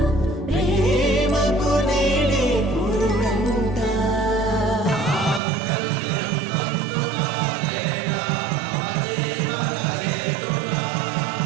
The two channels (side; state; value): left; drops out; at 5.4 s